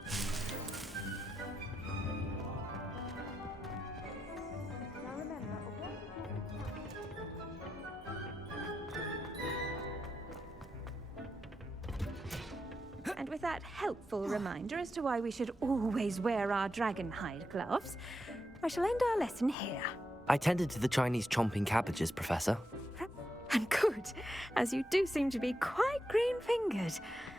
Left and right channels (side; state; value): both; normal; correlation 0.85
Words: And with that helpful reminder as to why we should always wear our dragon hide gloves, I shall end our lesson here. I tended to the Chinese chomping cabbages, Professor. And good, as you do seem to be quite green-fingered.